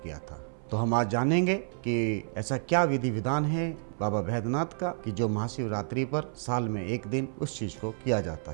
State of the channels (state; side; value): silent; left; 58 dB below the other